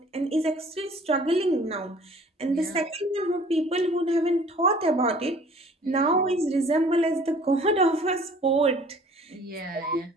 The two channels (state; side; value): normal; both; correlation 0.51